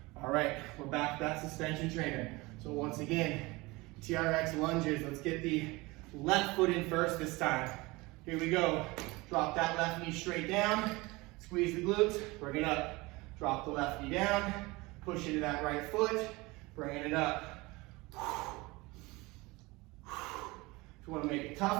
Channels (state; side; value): quieter; left; 22.9 dB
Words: All right, we're back to that suspension trainer. So once again, TRX lunges. Let's get the left foot in first this time. Here we go. Drop that left knee straight down. Squeeze the glutes, bring it up. Drop the left knee down. Push into that right foot, bringing it up. If you want to make it